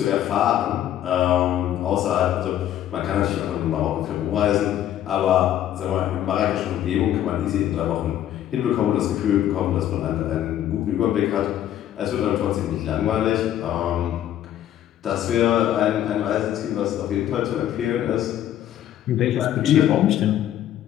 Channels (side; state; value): right; quieter; 11.6 dB